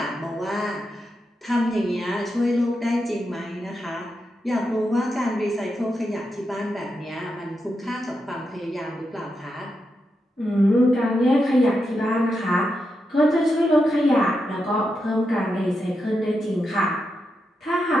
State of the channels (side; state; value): both; normal; correlation 0.86